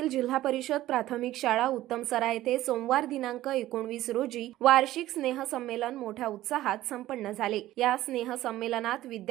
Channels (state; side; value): quieter; left; 15.0 dB